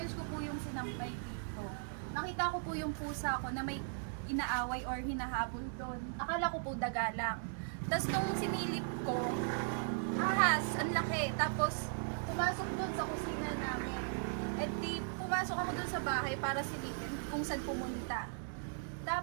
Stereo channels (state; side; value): silent; left; digital silence